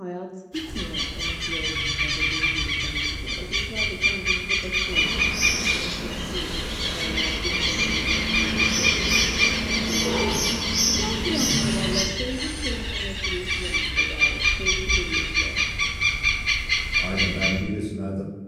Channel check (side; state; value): both; identical; correlation 1.00